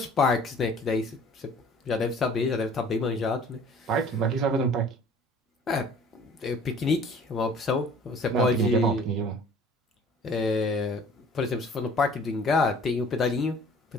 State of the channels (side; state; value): both; normal; correlation 0.51